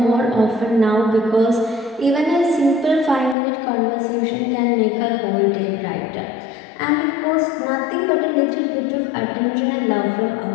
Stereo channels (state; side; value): drops out; right; at 3.4 s